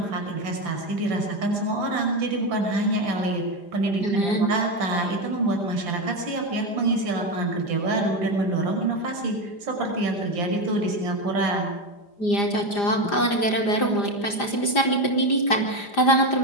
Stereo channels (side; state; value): right; late; 5.0 ms